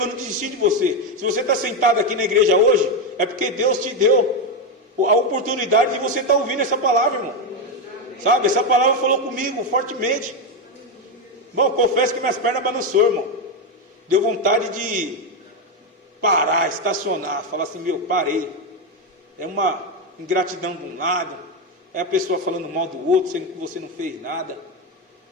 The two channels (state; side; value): normal; both; correlation 0.08